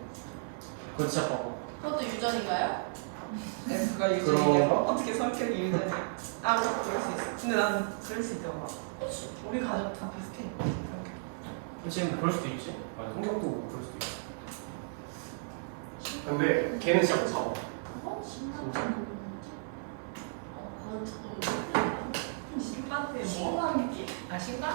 그거 진짜 봐봐. 그것도 유전인가요? F가 유전이야. 어떻게 성격이 유전이야? 아, 뭐 그럴 수 있어. 근데 난 그럴 수 있잖아. 우리 가족 다 비슷해. 지금 그럴 수도 있지. 아니, 성격도 그럴 수도 있어. 근데 걔는 진짜 무서워. 어? 진짜. 그건 조금 신반대 뭐? 신감기. 아,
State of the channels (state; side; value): silent; left; 55 dB below the other